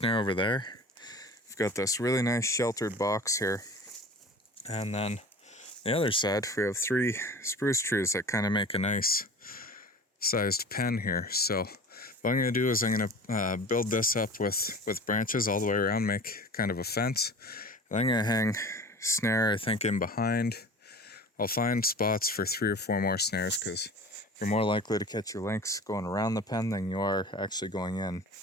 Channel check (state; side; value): normal; both; correlation 0.39